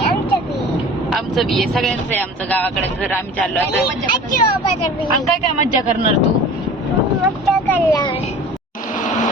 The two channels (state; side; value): normal; both; correlation 0.41